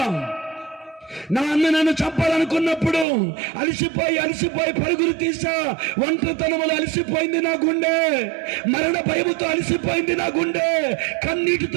నా అన్న నన్ను చంపాలనుకున్నప్పుడు అలసిపోయి పరుగులు తీసా. ఒంటరితనములో అలసిపోయింది నా గుండె. మరణ భయముతో అలసిపోయింది నా గుండె. కన్నీటితో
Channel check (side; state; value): left; drops out; at 3.1 s